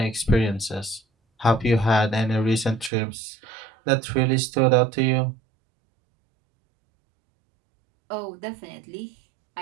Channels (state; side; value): drops out; left; at 2.9 s